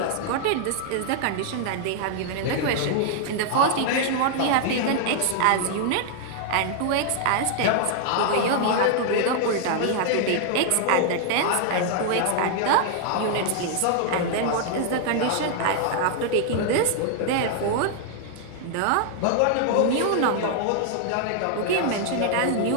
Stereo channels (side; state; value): both; different; correlation 0.00